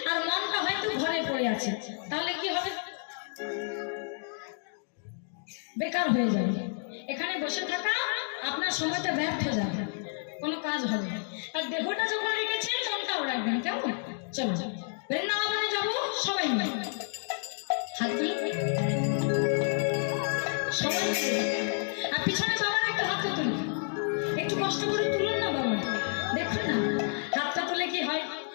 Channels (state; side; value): silent; right; 58 dB below the other